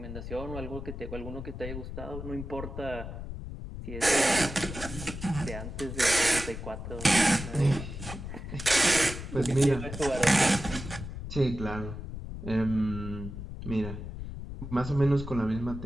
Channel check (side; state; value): left; noise; rumble, 8 dB below the sound